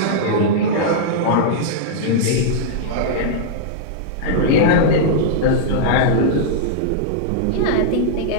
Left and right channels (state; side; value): different; both; correlation -0.02